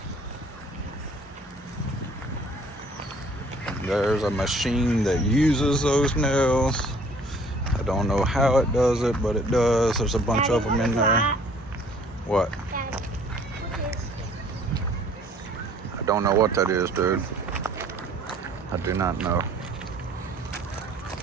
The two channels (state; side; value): normal; both; correlation 0.56